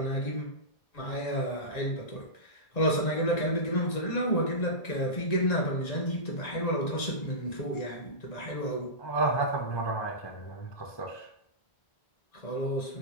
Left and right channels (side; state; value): right; late; 1.9 ms